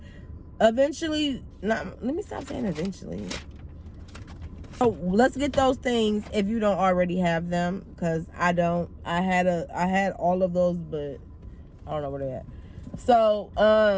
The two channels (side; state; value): both; identical; correlation 1.00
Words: eventually, let me stop saying eventually. So let's get those things if you don't already have them, because I don't. I had all of those, but I don't know where they're at. So